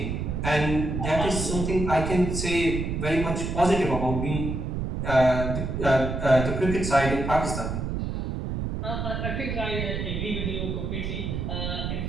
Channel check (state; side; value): noise; right; rumble, 3 dB below the sound